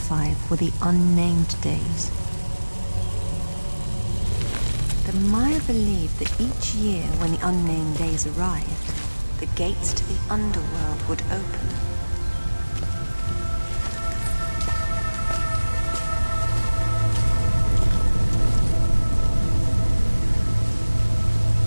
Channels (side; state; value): both; inverted; correlation -1.00